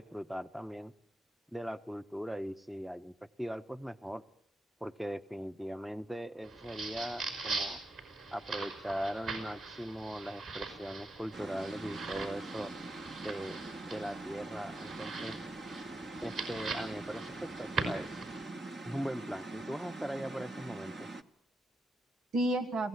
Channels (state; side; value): normal; both; correlation 0.84